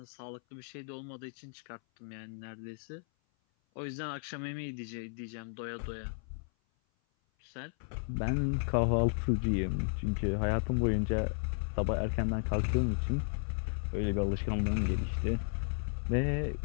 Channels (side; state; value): right; silent; 55 dB below the other